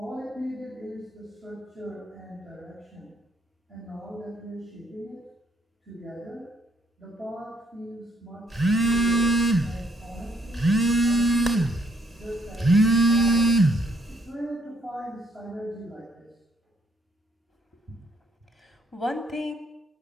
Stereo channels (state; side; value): normal; both; correlation 0.70